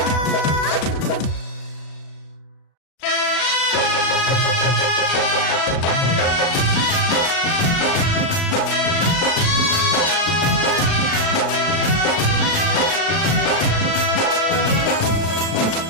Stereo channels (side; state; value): right; late; 36 ms